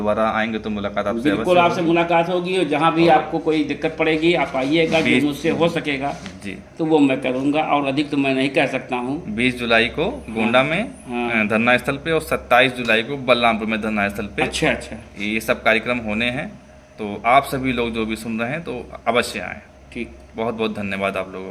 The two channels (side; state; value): both; identical; correlation 1.00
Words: आएंगे तो मुलाकात आपसे बिल्कुल आपसे मुलाकात होगी, और जहाँ भी आपको कोई दिक्कत पड़ेगी आप आइएगा, जो मुझसे हो सकेगा जी तो वो मैं करूँगा, और अधिक तो मैं नहीं कह सकता हूँ। 20 जुलाई को गोंडा में धरना स्थल पे, और 27 जुलाई को बलरामपुर में धरना स्थल पे अच्छा अच्छा, ये सब कार्यक्रम होने हैं। तो आप सभी लोग जो भी सुन रहे हैं तो अवश्य आएँ। ठीक, बहुत बहुत धन्यवाद आप लोगों